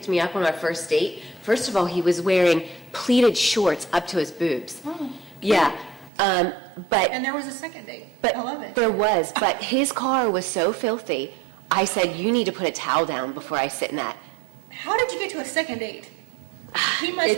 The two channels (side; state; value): left; drops out; at 6.1 s